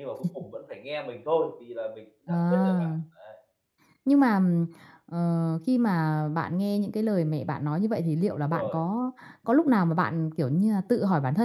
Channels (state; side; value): identical; both; correlation 1.00